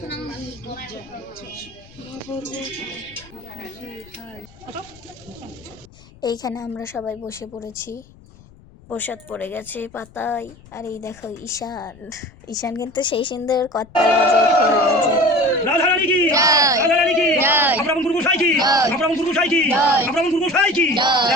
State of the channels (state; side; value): noise; left; rumble, 24 dB below the sound